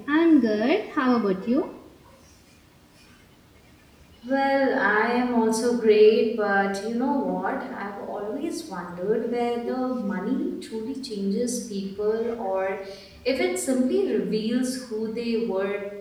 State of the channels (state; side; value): identical; both; correlation 1.00